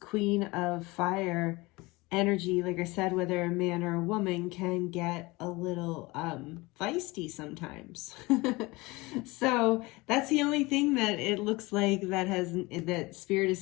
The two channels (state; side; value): quieter; right; 22.9 dB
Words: of Fire energy, like I said, whether a man or a woman, can get a little feisty sometimes. So that's the only thing that it looks like that Spirit